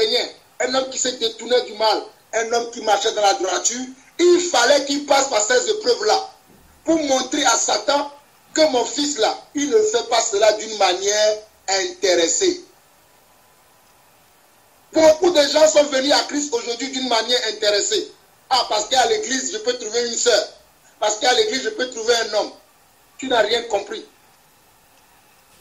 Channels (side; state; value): both; identical; correlation 1.00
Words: un homme qui se détournait du mal, un homme qui marchait dans la droiture, il fallait qu'il passe par ces épreuves-là pour montrer à Satan que mon fils là, il ne fait pas cela d'une manière intéressée. Beaucoup de gens sont venus à Christ aujourd'hui d'une manière intéressée. Ah, parce qu'à l'église, je peux trouver une sœur. Parce qu'à l'église, je peux trouver un homme. Tu n'as rien compris.